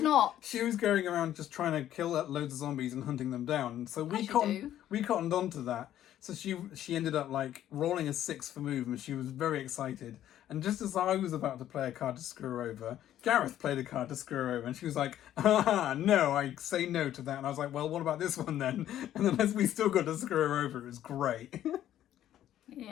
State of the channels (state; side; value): quieter; right; 11.9 dB